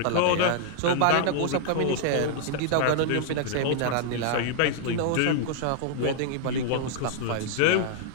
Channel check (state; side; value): different; both; correlation -0.01